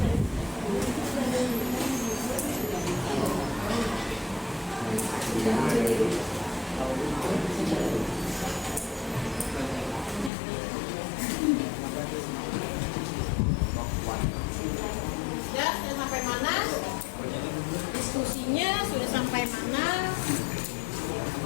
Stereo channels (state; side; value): drops out; right; at 10.3 s